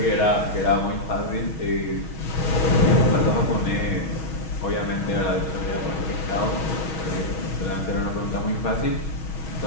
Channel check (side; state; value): right; late; 6.3 ms